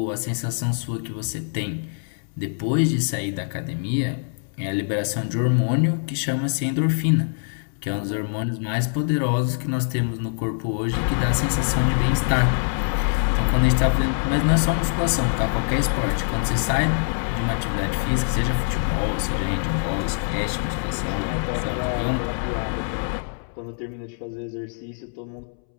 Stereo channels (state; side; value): silent; right; 63 dB below the other